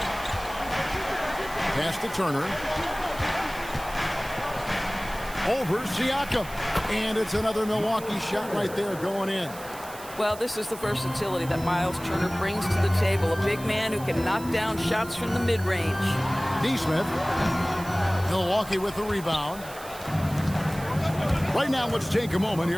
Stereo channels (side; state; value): right; noise; hiss, 16 dB below the sound